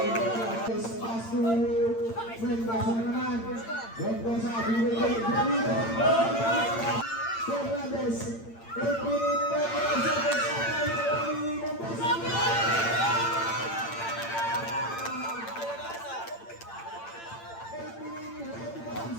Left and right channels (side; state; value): right; late; 8.8 ms